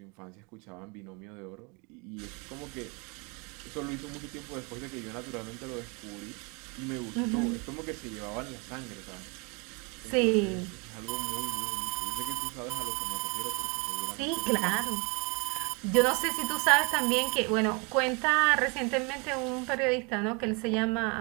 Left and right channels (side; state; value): left; quieter; 31.0 dB